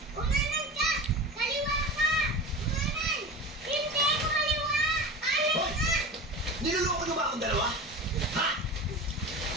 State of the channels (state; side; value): normal; both; correlation 0.31